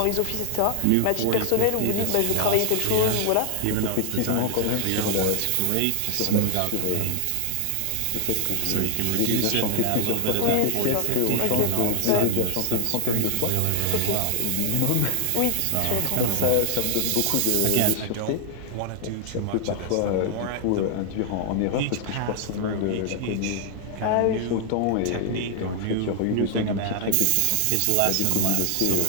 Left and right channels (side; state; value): both; different; correlation 0.00